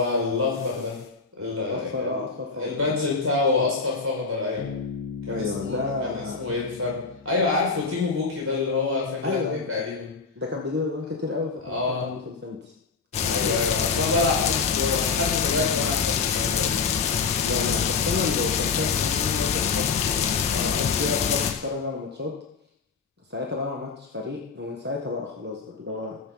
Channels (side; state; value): right; quieter; 4.8 dB